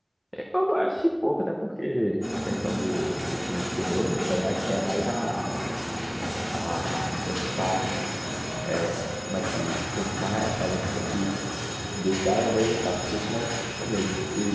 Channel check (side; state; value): both; identical; correlation 1.00